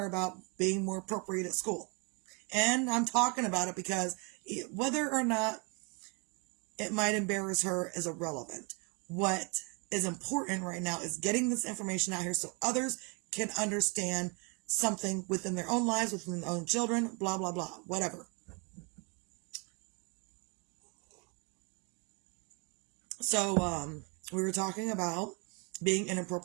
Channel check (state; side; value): quieter; left; 32.5 dB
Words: about being more appropriate at school. And I'm talking about it because whether or not it might embarrass her is irrelevant. What is important right now is getting this information out here so others can understand something within their own lives, within their own children, blah, blah, blah, whatever. So, we were talking about being